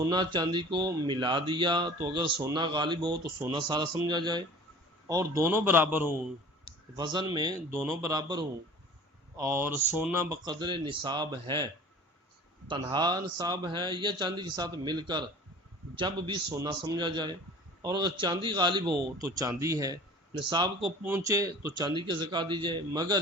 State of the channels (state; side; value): normal; both; correlation 0.43